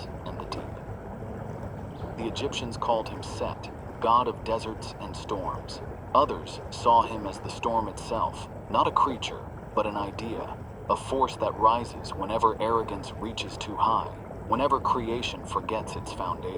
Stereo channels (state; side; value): identical; both; correlation 1.00